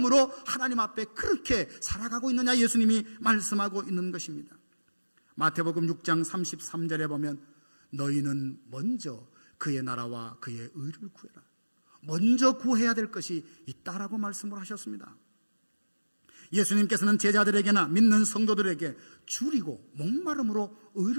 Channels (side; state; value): both; inverted; correlation -1.00